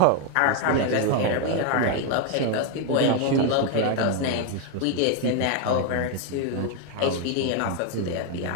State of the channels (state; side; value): different; both; correlation 0.01